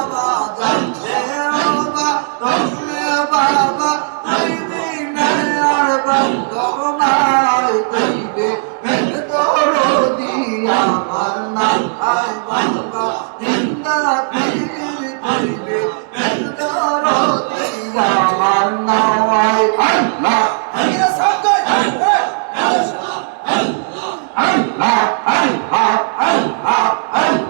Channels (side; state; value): left; silent; digital silence